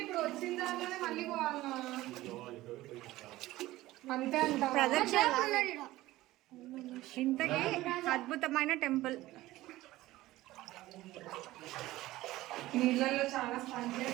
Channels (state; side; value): quieter; left; 17.0 dB